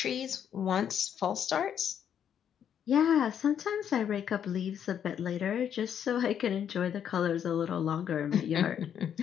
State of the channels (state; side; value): quieter; right; 8.8 dB